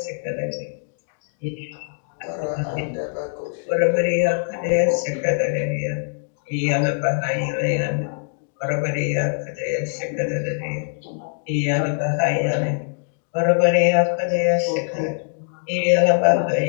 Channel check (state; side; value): silent; right; digital silence